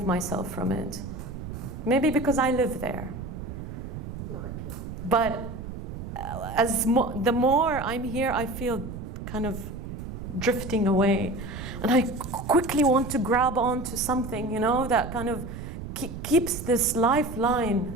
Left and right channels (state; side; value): noise; right; rumble, 9 dB below the sound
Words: myself from it. Maybe because I live there. But the more I'm here, I feel kind of drifting away. And I quickly want to grab onto something, that kind of keeps this